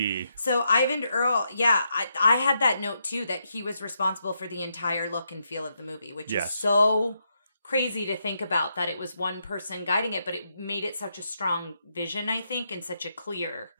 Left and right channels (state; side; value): inverted; both; correlation -0.81